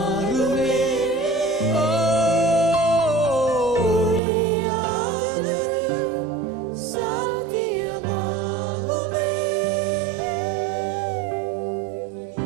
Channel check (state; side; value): drops out; left; at 4.2 s